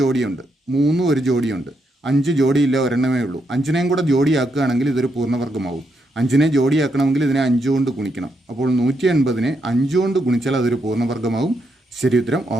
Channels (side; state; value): both; normal; correlation 0.80